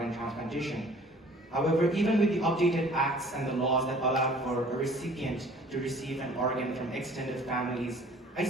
transplantation. However, even with the updated acts and the laws that allowed for a recipient to receive an organ from extended families, I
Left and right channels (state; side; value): normal; both; correlation 0.52